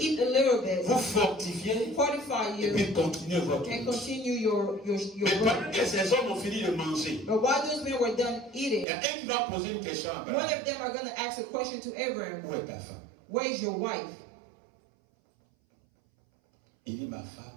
a little bit, vous fortifier fortify et you, puis continuer votre and route. continue your Mais pendant work. que ces hommes ont fini de manger, But while those men were done il eating, y a un qui va poser une question à one Abraham. of them are going to ask a question to Abraham. Où est ta femme? Where is your wife? Il dit, ma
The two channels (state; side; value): drops out; left; at 8.8 s